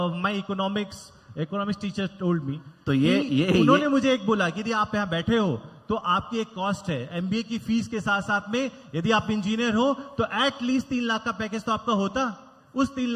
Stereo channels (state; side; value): identical; both; correlation 1.00